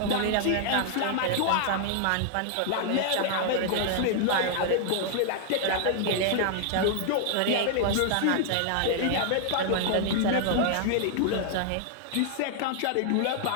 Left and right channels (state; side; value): different; both; correlation -0.01